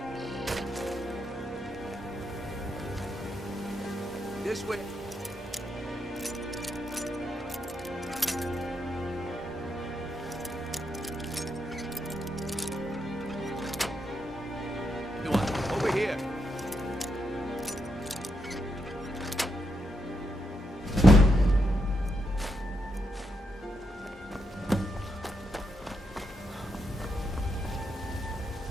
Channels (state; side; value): normal; both; correlation 0.82